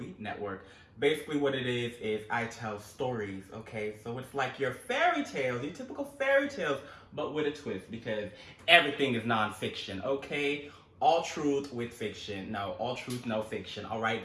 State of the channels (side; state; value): both; identical; correlation 1.00